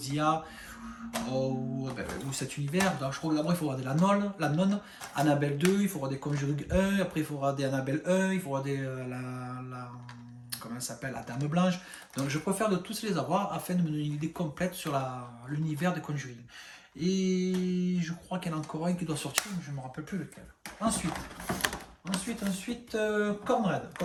ou cet univers, donc je crois que d'abord il faut regarder la nonne, Annabelle 2, il faut regarder Conjuring 1, après il faut regarder Annabelle 1, il faut regarder comment elle s'appelle, la Dame Blanche. Donc je préfère de tous les avoir afin de me donner une idée complète sur l'univers de Conjuring. Et je crois qu'il y en a encore un qui doit sortir, mais je ne me rappelle plus lequel. Ensuite, Conrad.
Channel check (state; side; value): identical; both; correlation 1.00